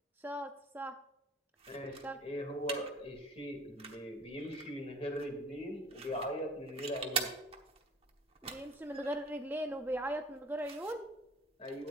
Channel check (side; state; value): both; normal; correlation 0.48